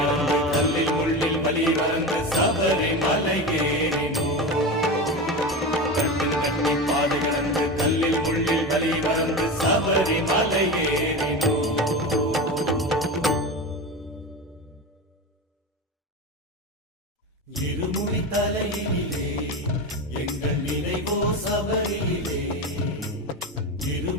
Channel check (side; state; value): both; normal; correlation 0.23